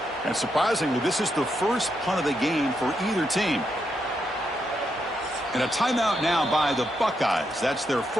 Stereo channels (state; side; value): normal; both; correlation 0.81